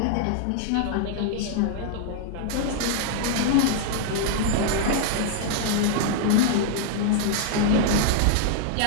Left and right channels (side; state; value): both; different; correlation -0.01